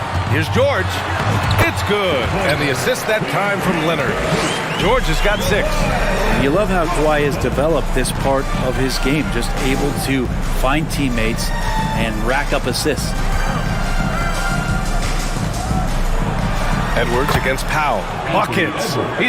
Here's George. It's good. And the assist that time from Leonard. George has got 6. You love how Kawhi has developed this part of his game, just able to find teammates and rack up assists. Edwards against Powell. Buckets.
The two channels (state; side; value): identical; both; correlation 1.00